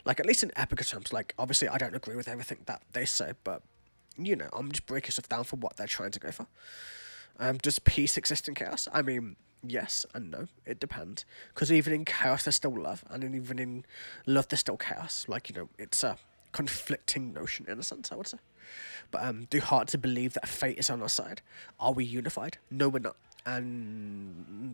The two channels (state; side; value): inverted; both; correlation -1.00